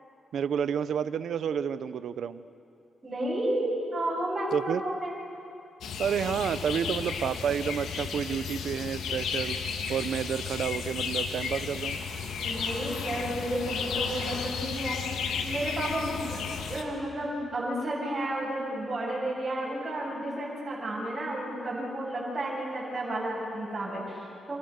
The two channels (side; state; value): both; normal; correlation 0.74